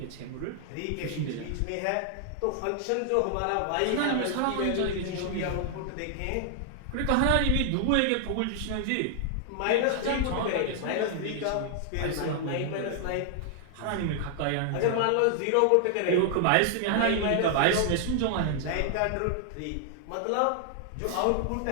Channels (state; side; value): different; both; correlation 0.00